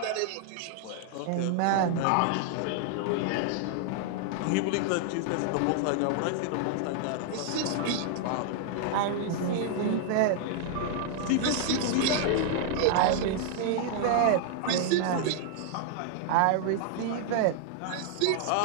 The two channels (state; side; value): different; both; correlation 0.00